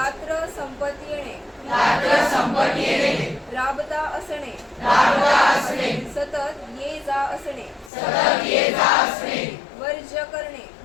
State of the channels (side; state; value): right; drops out; at 7.9 s